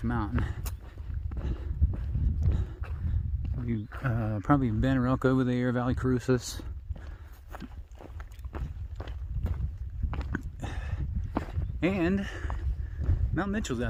Mountain. You probably Banner Elk over there, Valley Crucis. And Mount Mitchell's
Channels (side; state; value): both; identical; correlation 1.00